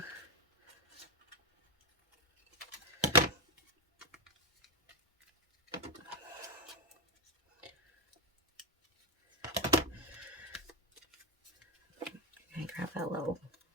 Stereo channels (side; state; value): both; normal; correlation 0.07